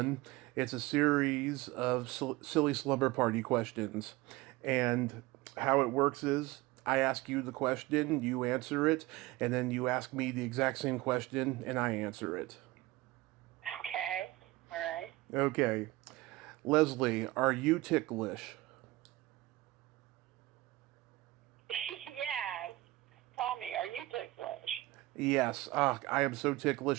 It's a series of silly slumber party questions, and how it works is I ask you the question, you answer it, and then you ask me the exact same question, and I answer it. Okay, all right. Okay, Leslie, are you ticklish? Yes. Tommy, are you ticklish? Yes. I am so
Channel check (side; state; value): left; quieter; 19.2 dB